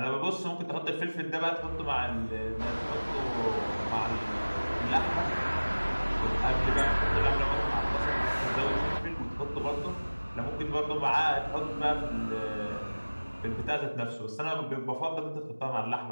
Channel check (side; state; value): both; inverted; correlation -1.00